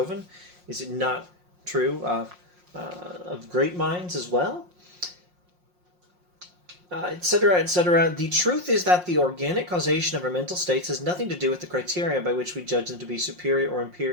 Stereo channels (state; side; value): late; left; 5.6 ms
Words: Is it not true of great minds as well? etc., etc. The truth is that the organic causation of our mental states has nothing to do with the criteria by which we judge them to be superior